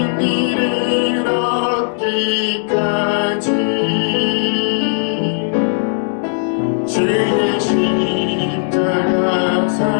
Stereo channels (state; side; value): silent; right; digital silence